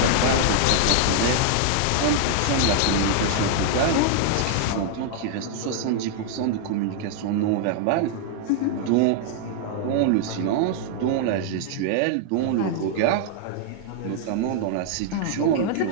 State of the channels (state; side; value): different; both; correlation 0.00